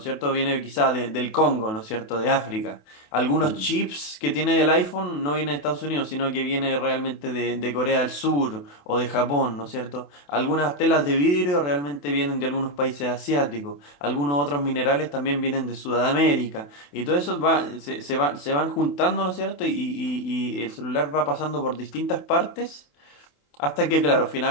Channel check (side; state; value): right; late; 28 ms